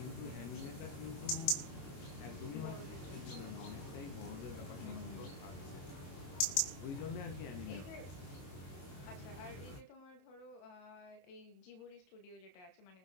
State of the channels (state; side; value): late; right; 22 ms